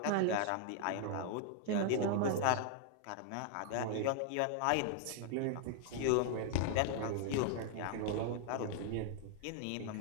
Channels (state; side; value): different; both; correlation 0.00